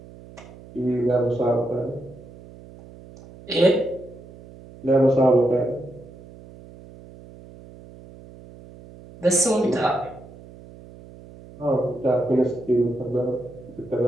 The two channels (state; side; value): noise; right; hum, 20 dB below the sound